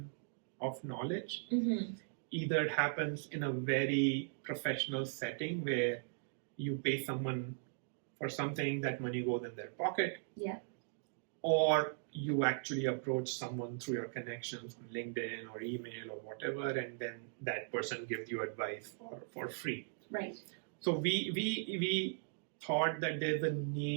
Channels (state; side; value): silent; left; digital silence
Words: of knowledge either happens in a very professional setting where you pay someone for something, that money goes in their pocket. Yeah. Or you actually approach someone through your connections on LinkedIn or email or whatever, and then that person gives you advice for free. Right. So we thought that there's a